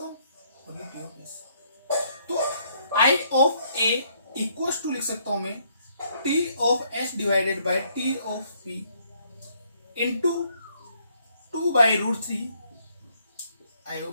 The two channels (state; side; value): inverted; both; correlation -0.68